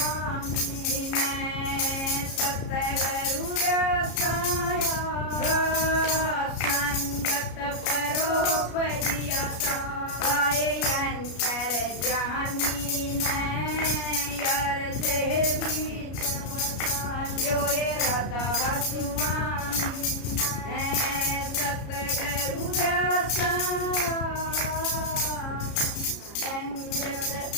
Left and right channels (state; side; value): late; right; 33 ms